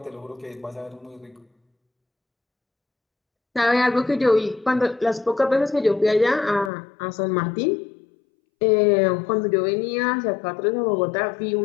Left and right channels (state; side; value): drops out; right; at 6.7 s